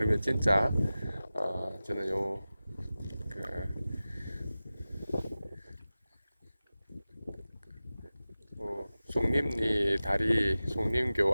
진짜 저는 그 송림리 다리 송림교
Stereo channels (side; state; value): both; inverted; correlation -0.96